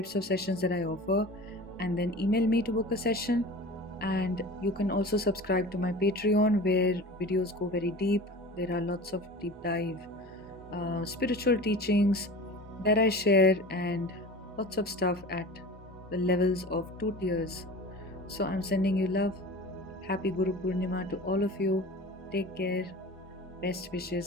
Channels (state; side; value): normal; both; correlation 0.36